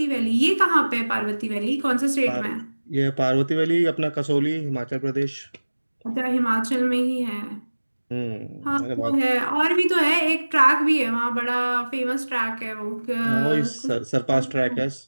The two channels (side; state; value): both; inverted; correlation -1.00